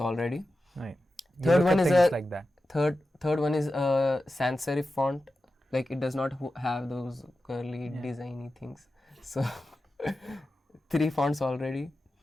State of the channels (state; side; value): normal; both; correlation 0.92